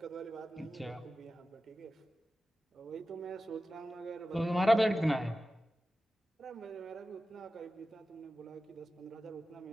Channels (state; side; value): normal; both; correlation 0.94